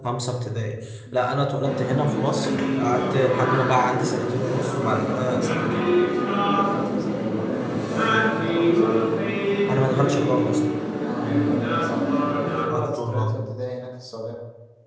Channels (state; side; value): identical; both; correlation 1.00